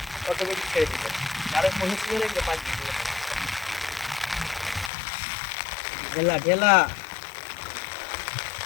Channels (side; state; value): right; drops out; at 4.9 s